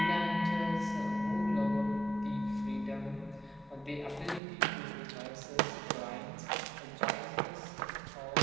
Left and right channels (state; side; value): drops out; left; at 4.4 s